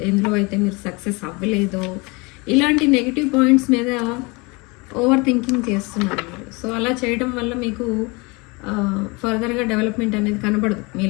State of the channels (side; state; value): right; quieter; 27.3 dB